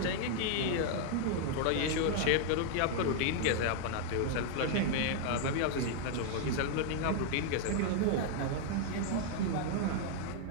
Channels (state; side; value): different; both; correlation 0.00